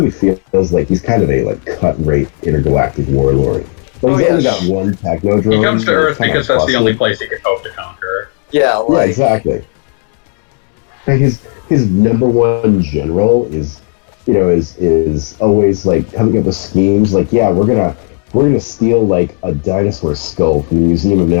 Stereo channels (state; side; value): quieter; right; 38.2 dB